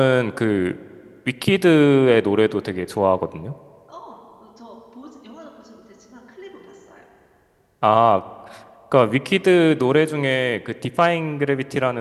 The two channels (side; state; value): both; identical; correlation 1.00